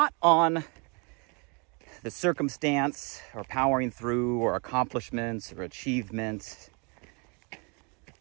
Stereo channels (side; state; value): left; quieter; 33.0 dB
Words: on the circumstance or powering through or accomplishments or achievements,